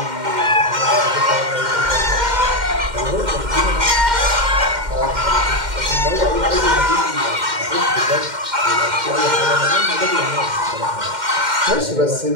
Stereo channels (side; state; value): left; late; 2.1 ms